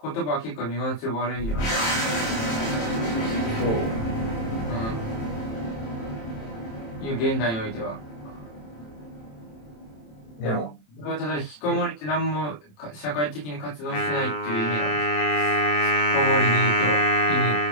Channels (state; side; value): late; right; 27 ms